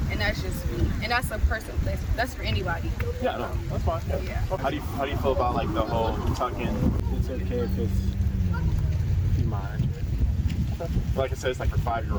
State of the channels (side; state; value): both; identical; correlation 1.00